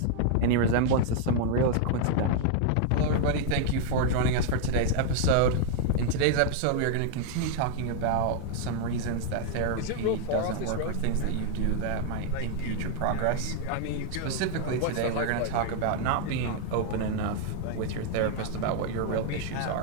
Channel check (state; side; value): different; both; correlation 0.00